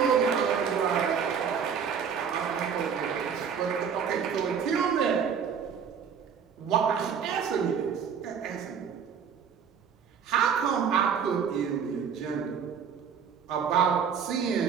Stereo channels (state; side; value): quieter; left; 7.1 dB